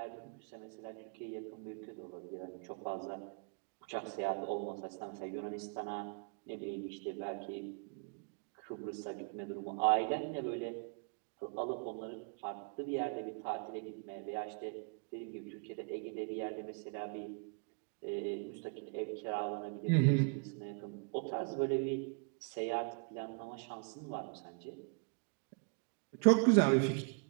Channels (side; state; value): left; quieter; 38.5 dB